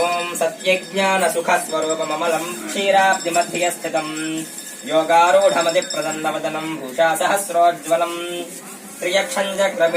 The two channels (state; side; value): identical; both; correlation 1.00